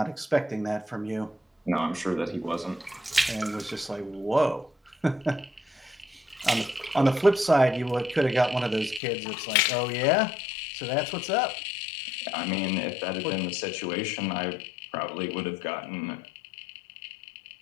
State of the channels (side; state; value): right; drops out; at 9.0 s